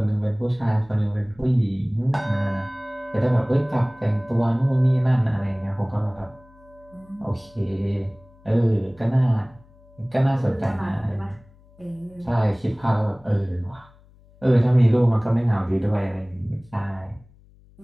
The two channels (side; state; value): left; noise; hum, 27 dB below the sound